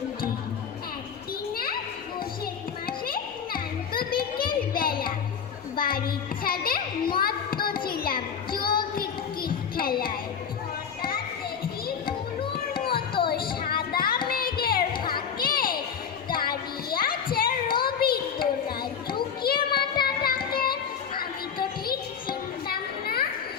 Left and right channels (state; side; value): quieter; right; 7.2 dB